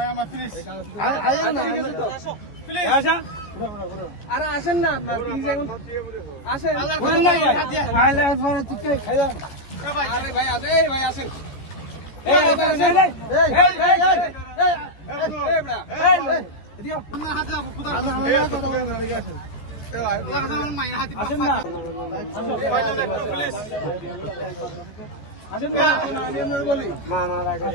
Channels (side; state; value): right; late; 14 ms